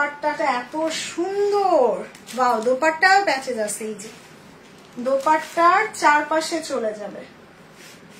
এত সুন্দর। ওয়াও, দোপাট্টাও প্যাচেস আছে। এই যে দোপাট্টার চারপাশে চলে যাবে,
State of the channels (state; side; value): identical; both; correlation 1.00